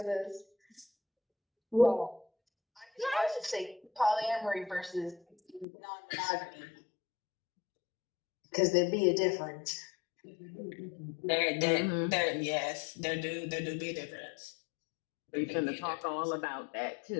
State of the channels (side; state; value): right; drops out; at 5.7 s